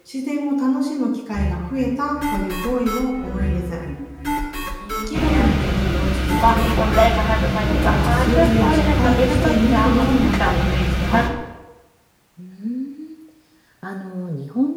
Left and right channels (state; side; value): identical; both; correlation 1.00